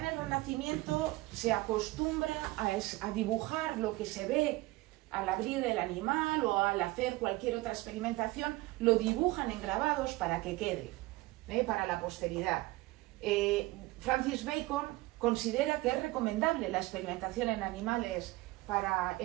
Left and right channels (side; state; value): left; quieter; 20.0 dB